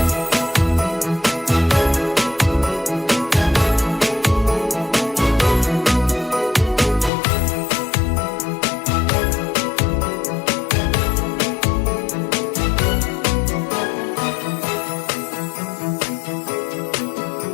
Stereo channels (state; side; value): drops out; right; at 7.1 s